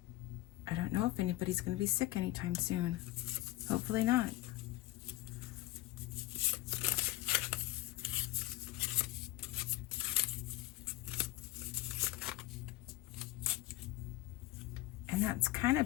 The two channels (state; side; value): quieter; right; 17.3 dB